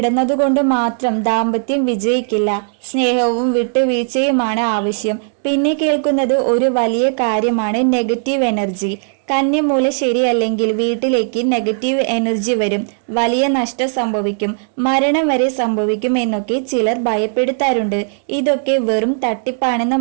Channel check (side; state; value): left; silent; digital silence